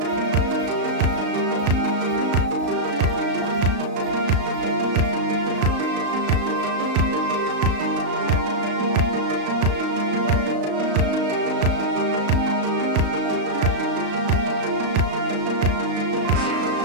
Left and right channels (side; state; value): left; late; 35 ms